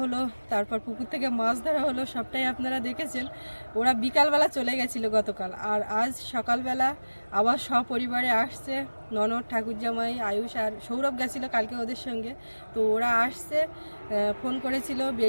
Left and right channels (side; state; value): both; inverted; correlation -1.00